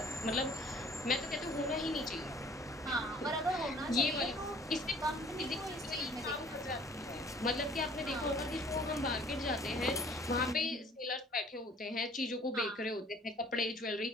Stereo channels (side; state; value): both; normal; correlation 0.53